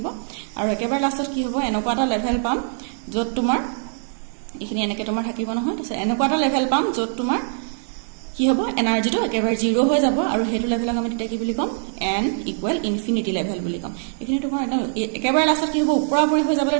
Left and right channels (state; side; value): silent; left; 64 dB below the other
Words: আৰু একেবাৰে লাষ্টত কি হ'ব এনেকুৱা এটা লেভেল পাম য'ত তোমাৰ এইখিনি এনেকৈ তোমাৰ থাকিব নহয় তাৰপিছত এনেকুৱা এটা লেভেল পাম য'ত তোমাৰ কি হ'ব এনাৰ্জিটো একেবাৰে 0 হৈ যাব আৰু হেতু লেভেলক আমি তেতিয়া কি বুলি কম n ইকুৱেল ইনফিনিটি লেভেল বুলি কম এইখিনি তোমাৰ একেবাৰে লাষ্টত কি হ'ব ওপৰাপৰি হৈ যাবলৈ